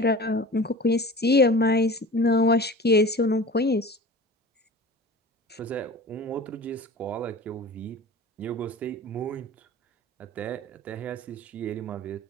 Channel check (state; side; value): normal; both; correlation 0.37